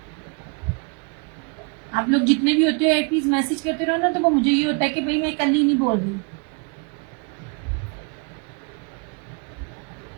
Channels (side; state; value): left; quieter; 36.0 dB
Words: आप लोग जितने भी होते हो एटलीस्ट मैसेज करते रहो ना, तो वो मुझे ये होता है कि भाई मैं कल ही नहीं बोल रही।